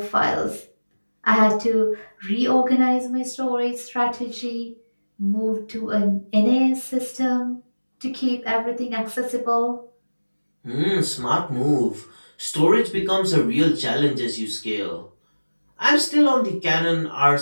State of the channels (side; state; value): both; inverted; correlation -1.00